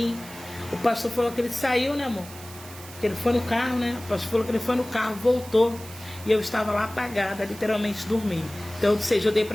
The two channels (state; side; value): noise; right; hiss, 16 dB below the sound